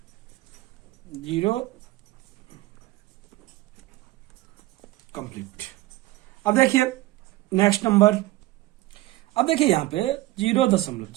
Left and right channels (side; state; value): left; quieter; 18.0 dB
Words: 0 कंप्लीट। अब देखिए नेक्स्ट नंबर, अब देखिए यहां पे